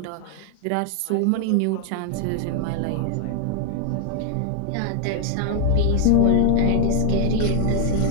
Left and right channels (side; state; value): both; different; correlation 0.00